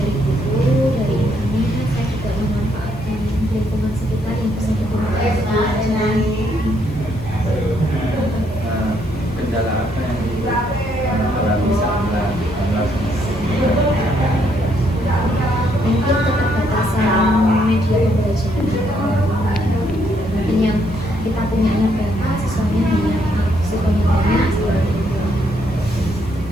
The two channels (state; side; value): noise; left; hiss, 28 dB below the sound